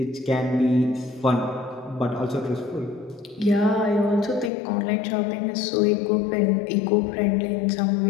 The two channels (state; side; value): drops out; right; at 4.5 s